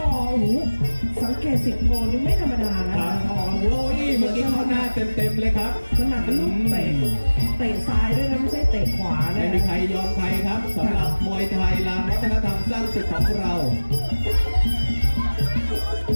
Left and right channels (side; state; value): both; inverted; correlation -1.00